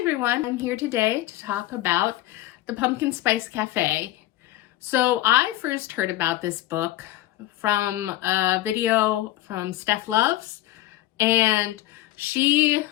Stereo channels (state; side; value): quieter; right; 15.1 dB